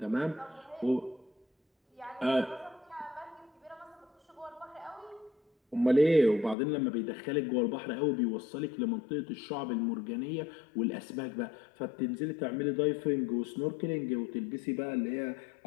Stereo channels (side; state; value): right; drops out; at 6.6 s